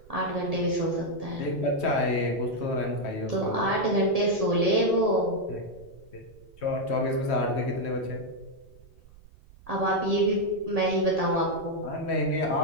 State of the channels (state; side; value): noise; right; rumble, 23 dB below the sound